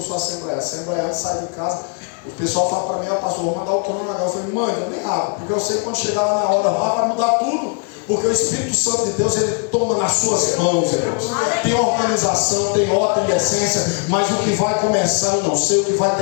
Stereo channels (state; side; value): quieter; right; 38.1 dB